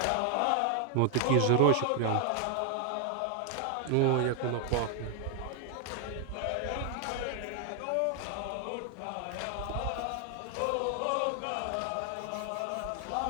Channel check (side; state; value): both; different; correlation 0.00